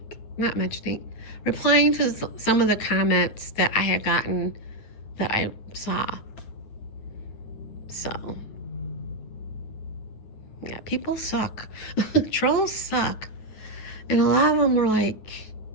replying to some of the comments that I had gotten that I saw. So, yeah, people suck. Trolls suck. And a lot of them were like,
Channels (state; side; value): late; right; 9.3 ms